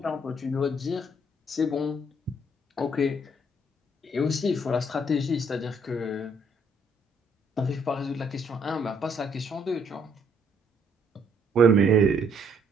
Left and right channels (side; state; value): both; normal; correlation 0.67